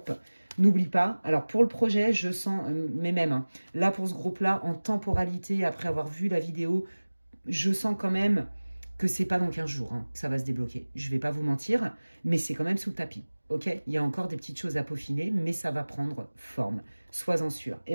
N'oublie pas, alors pour le projet, je sens, mais même, là, pour ce groupe-là, en temporalité, après avoir vu la vidéo, je sens quand même... que c'est pas dans 15 jours que ça va se débloquer. Je vais pas vous mentir, mais c'est quand même sous le tapis. Ok? Il y a encore des petites choses à peaufiner, mais ça va prendre forme. Sois-en sûr.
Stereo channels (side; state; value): both; inverted; correlation -1.00